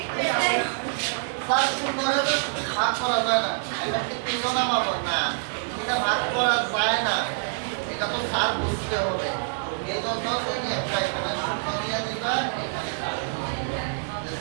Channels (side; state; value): left; silent; digital silence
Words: স্যার 0 তো ভাগ করা যায় না এটা কি তিনজন নামাবো না এটা ভাগ করা যায় না এটা তো স্যার বুঝতে হবে এই জন্য তুমি একটা এখানে 0 দিয়ে দিবা এখানে